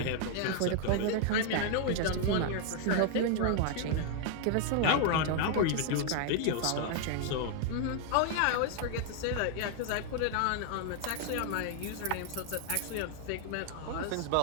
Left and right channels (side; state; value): both; different; correlation 0.00